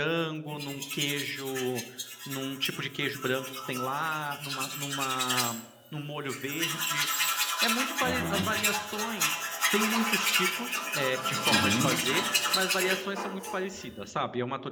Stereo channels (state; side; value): identical; both; correlation 1.00